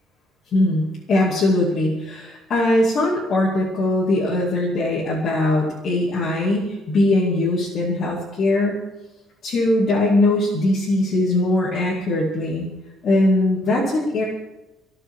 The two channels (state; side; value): normal; both; correlation 0.68